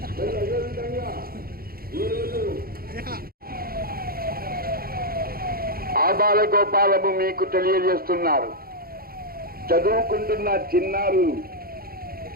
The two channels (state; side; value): late; left; 0.43 ms